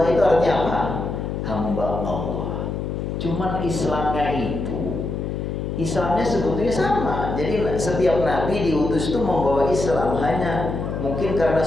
itu artinya apa? Hamba Allah. Cuman Islamnya sebetulnya sama. Jadi setiap nabi diutus itu membawa Islam. Hanya mungkin karena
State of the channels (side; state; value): left; noise; hum, 4 dB below the sound